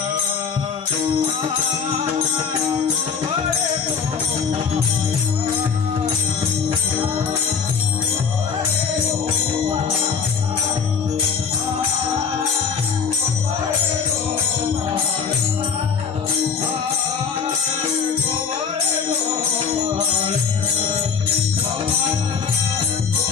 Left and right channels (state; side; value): quieter; right; 6.1 dB